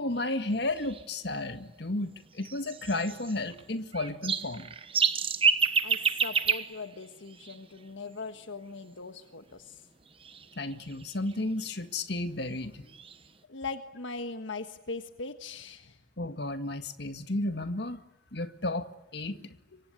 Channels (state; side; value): normal; both; correlation 0.14